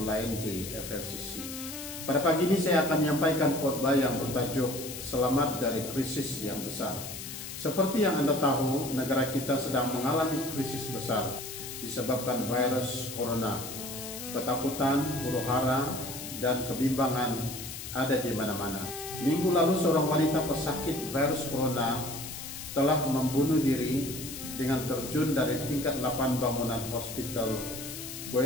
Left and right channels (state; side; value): noise; left; hiss, 9 dB below the sound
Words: di FLCC. Pada pagi ini saya akan menyampaikan khotbah yang bertajuk Selamat dari Krisis yang Besar. Seperti yang Anda tahu, negara kita sedang mengalami krisis besar disebabkan virus corona. Ketakutan, huru-hara, dan kebimbangan ada di mana-mana. Minggu lalu seorang wanita pesakit virus corona telah membunuh diri dengan terjun dari tingkat 8 bangunan hospital